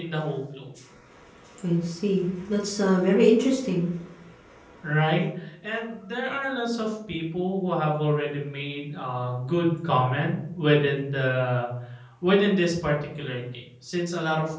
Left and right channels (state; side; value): identical; both; correlation 1.00